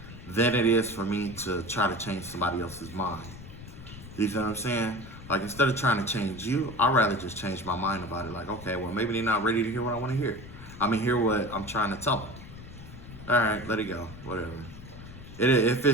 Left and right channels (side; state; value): left; noise; rumble, 14 dB below the sound